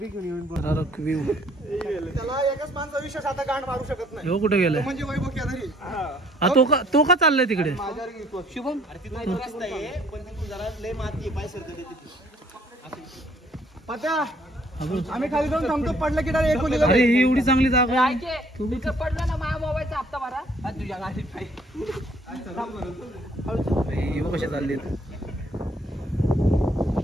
घेऊन व्ह्यू त्याला एकच माणसा विशेष आता गांड मारू शकत नाही. हो कुठे गेलाय म्हणजे वैभव केदारी तो का चाललाय तिकडे. शुभम अरे तिथं रस्ता आहे पण तिथून जरा लय माती आहे, पाय सरकते तिथे. पत्या आम्ही खाली जाऊन थांबतो, पडलं की डायरेक्ट एकोलीला. अरे ही एवढी चांगली जागा आहे. तिथं पडलं ना माझ्या मोबाईलचा हप्ता भरा तुझ्या गाडीत कशा चालले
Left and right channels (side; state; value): both; normal; correlation 0.62